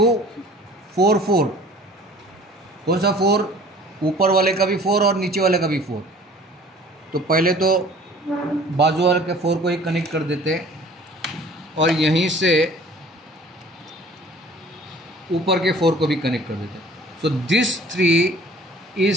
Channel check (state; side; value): normal; both; correlation 0.49